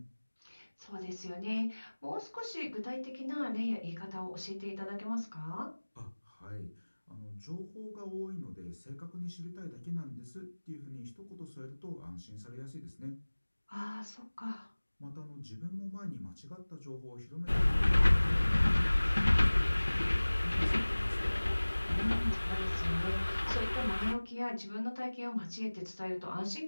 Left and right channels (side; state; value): both; inverted; correlation -1.00